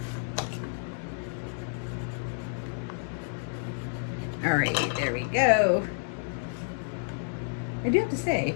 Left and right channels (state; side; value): silent; right; digital silence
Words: All right, there we go. I do have to say,